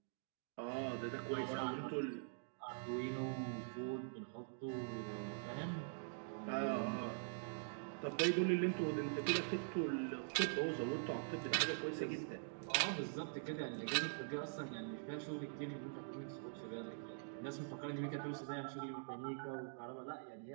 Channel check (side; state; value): left; silent; digital silence